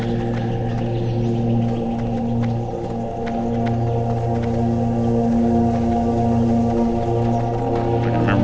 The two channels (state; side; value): identical; both; correlation 1.00